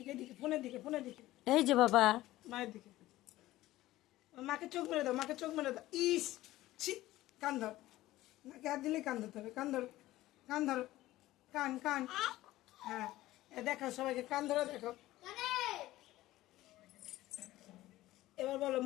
এদিকে, ফোনের দিকে, ফোনের দিকে, এই যে বাবা, মায়ের দিকে। মাকে চোখ মেরে দাও, মাকে চোখ মেরে দাও। ইস, ছি, কান ধর, নাকে হাত দিলে কান ধরতে হবে, কান ধরো, কান ধরো, কান কান। হ্যাঁ, দেখো সবাইকে কান ধরে দেখো। এবার বলো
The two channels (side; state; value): right; quieter; 16.3 dB